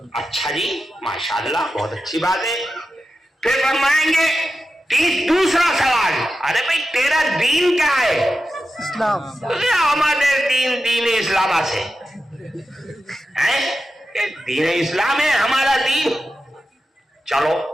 اچھا جی ماشاءاللہ بہت اچھی بات ہے. پھر فرمائیں گے دوسرا سوال، ارے بھائی تیرا دین کیا ہے؟ اسلام. ہمارے دین اسلام سے ہے، دین اسلام ہے ہمارا دین. چلو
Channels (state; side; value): normal; both; correlation 0.91